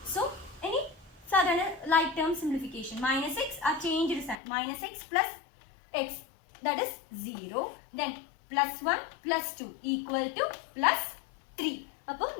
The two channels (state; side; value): drops out; right; at 4.4 s